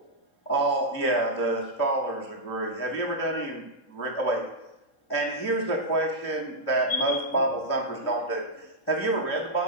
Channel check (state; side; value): late; right; 3.7 ms